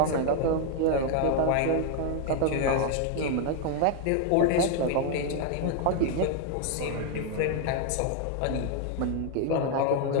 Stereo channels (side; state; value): both; different; correlation 0.01